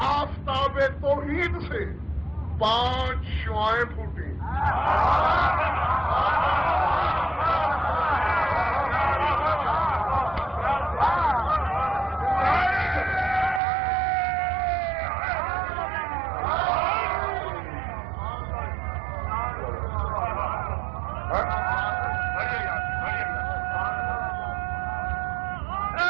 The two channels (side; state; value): left; drops out; at 13.6 s